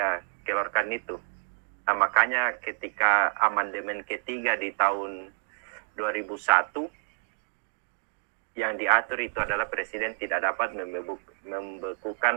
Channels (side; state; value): left; silent; digital silence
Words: keluarkan itu. Nah, makanya ketika amandemen ketiga di tahun 2001, yang diatur itu adalah presiden tidak dapat